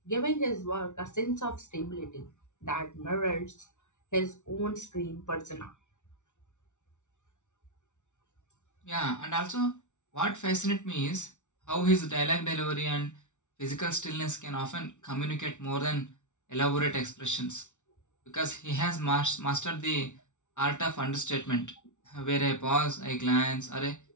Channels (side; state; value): right; late; 0.85 ms